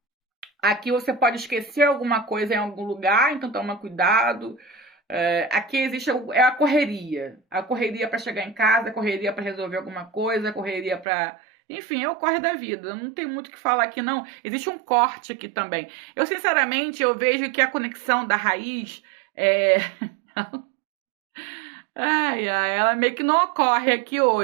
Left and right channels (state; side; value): drops out; left; at 11.1 s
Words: Aqui você pode esquecer alguma coisa em algum lugar, então toma cuidado. Aqui existe a correria. A correria para chegar em casa, a correria para resolver alguma coisa, a correria para... Enfim, é o corre da vida. Não tem muito o que falar aqui, não. Existe um corte aqui também. Eu, sinceramente, eu vejo que a conexão da raiz... ela meio que não ocorre aqui